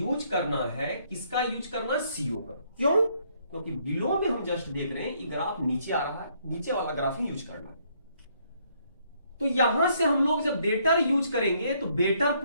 करना है, किसका यूज करना है, CO का। क्यों, क्योंकि बिलो में हम जस्ट देख रहे हैं ये ग्राफ नीचे आ रहा है, नीचे वाला ग्राफ ही यूज करना है। तो यहां से हम लोग जब बेटर यूज करेंगे तो बेटर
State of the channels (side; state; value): both; inverted; correlation -0.69